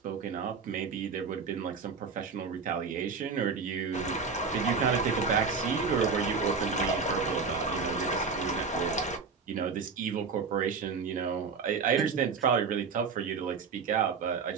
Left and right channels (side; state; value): left; quieter; 5.3 dB